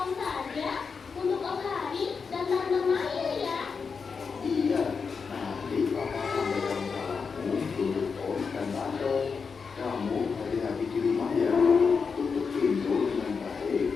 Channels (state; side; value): quieter; right; 5.4 dB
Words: saja untuk Om Hari dan Tante Maya ya. Iya, nanti papa sampaikan salammu untuk Om dan Tante. Kamu hati-hati di rumah ya. Tutup pintu dengan baik